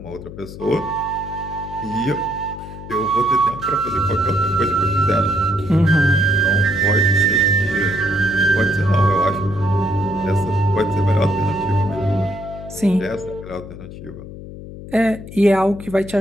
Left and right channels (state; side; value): noise; left; hum, 13 dB below the sound